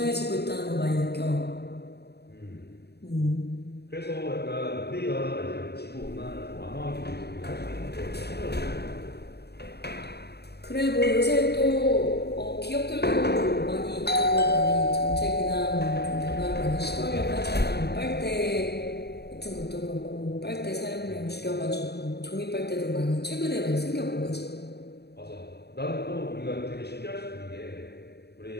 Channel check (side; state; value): right; late; 0.48 ms